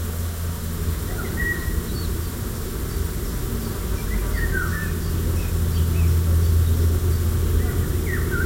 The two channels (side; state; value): both; identical; correlation 1.00